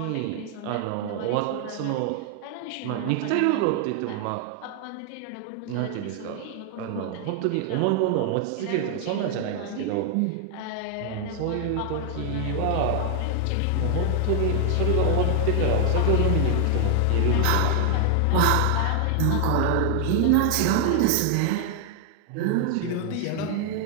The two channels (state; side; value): different; both; correlation 0.00